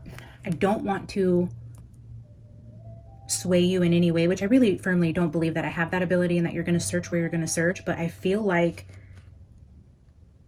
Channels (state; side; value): identical; both; correlation 1.00